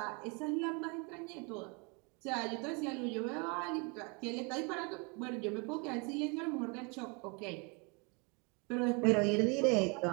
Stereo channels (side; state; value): left; quieter; 32.1 dB